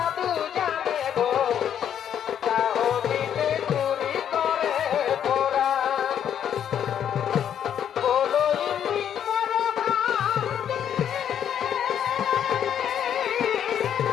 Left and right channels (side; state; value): right; quieter; 9.3 dB